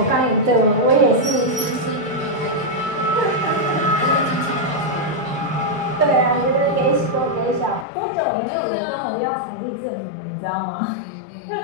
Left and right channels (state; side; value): drops out; right; at 7.9 s